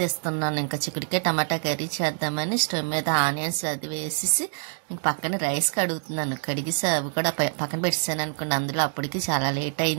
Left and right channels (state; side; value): silent; left; digital silence